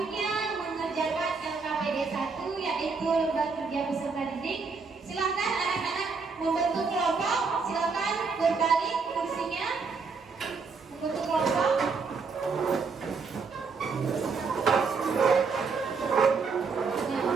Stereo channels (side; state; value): left; quieter; 4.8 dB